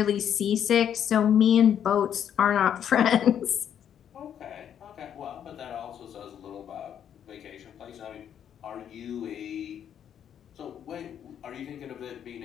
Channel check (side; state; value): right; quieter; 9.2 dB